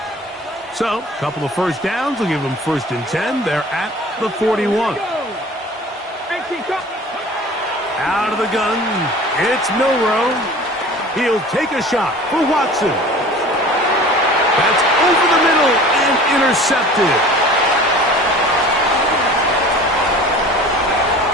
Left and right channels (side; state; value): both; normal; correlation 0.43